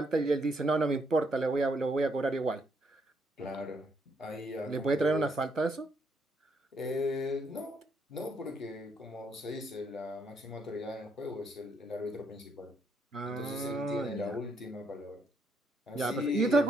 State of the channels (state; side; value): normal; both; correlation 0.74